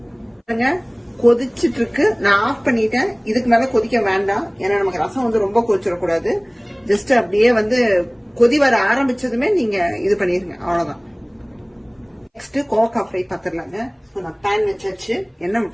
கொதிச்சிட்டு இருக்கு. நான் ஆஃப் பண்ணிட்டேன். இதுக்கு மேல கொதிக்க வேண்டாம். ஏன்னா நமக்கு ரசம் வந்து ரொம்ப கொதிச்சிடக்கூடாது. ஜஸ்ட் அப்படியே வந்து கொதி வர ஆரம்பிச்சதுமே நீங்க இது பண்ணிருங்க. அவ்வளவுதான். Next, கோவக்காய் ஃப்ரை பார்த்துடலாங்க. நான் பேன் வச்சாச்சு. எண்ணெய்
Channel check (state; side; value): identical; both; correlation 1.00